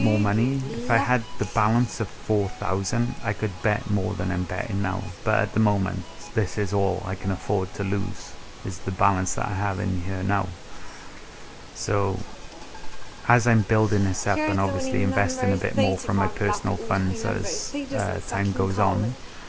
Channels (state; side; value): identical; both; correlation 1.00